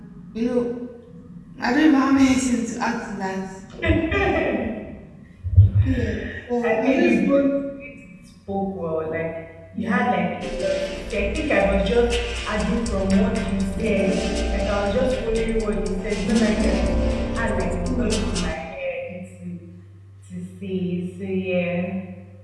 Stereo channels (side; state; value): both; identical; correlation 1.00